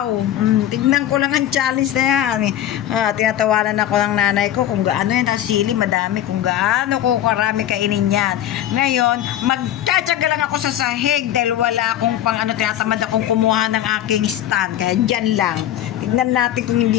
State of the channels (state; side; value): quieter; right; 11.9 dB